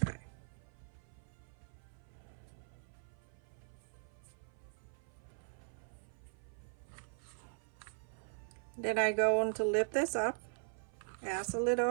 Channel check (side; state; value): left; silent; 51 dB below the other